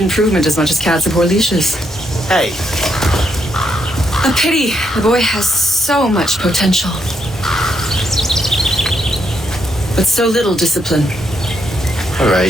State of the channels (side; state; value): both; normal; correlation 0.78